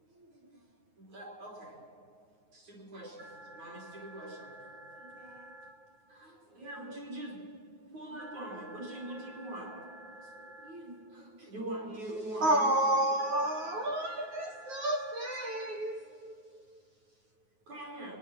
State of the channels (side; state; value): left; late; 9.4 ms